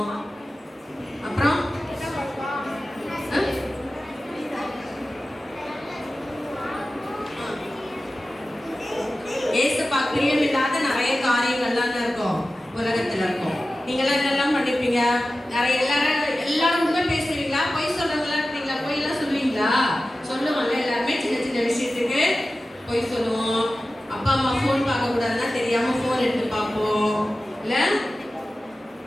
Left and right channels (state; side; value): normal; both; correlation 0.95